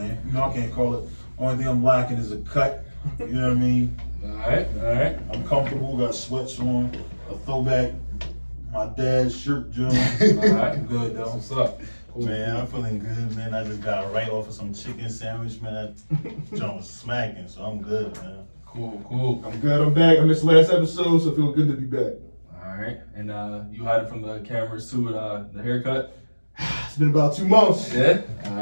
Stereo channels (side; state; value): both; inverted; correlation -1.00